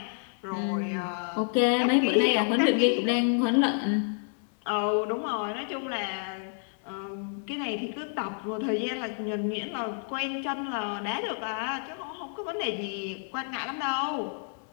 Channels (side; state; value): right; silent; 58 dB below the other